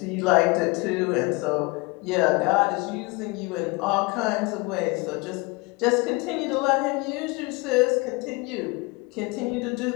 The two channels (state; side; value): quieter; right; 26.3 dB